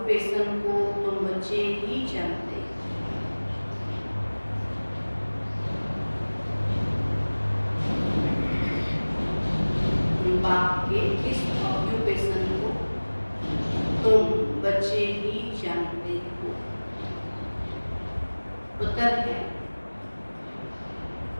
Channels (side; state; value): both; inverted; correlation -1.00